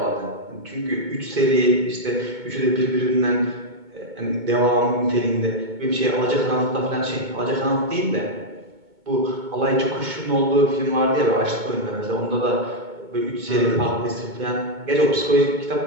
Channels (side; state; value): left; late; 2.2 ms